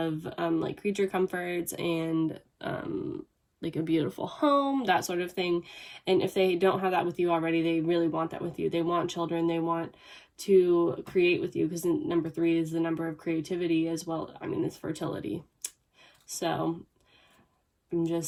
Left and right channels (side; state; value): both; identical; correlation 1.00